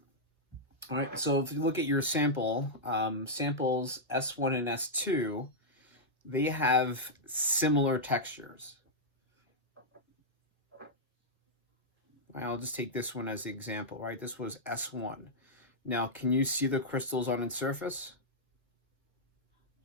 All right, so if you look at your sample, samples S1 and S2, they have similar textures. I'll just take this one as the example, right? This was S1. Now, can you see the crystals on its surface?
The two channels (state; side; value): normal; both; correlation -0.07